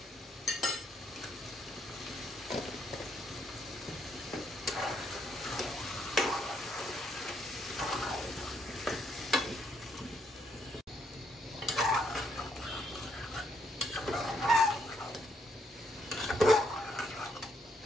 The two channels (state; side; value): normal; both; correlation 0.73